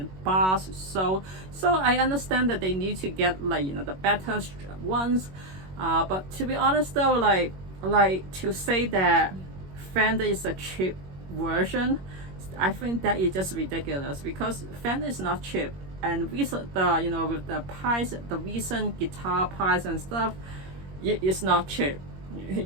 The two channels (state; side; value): late; left; 21 ms